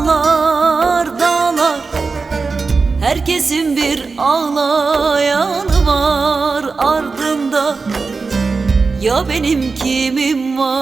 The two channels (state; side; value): quieter; left; 4.4 dB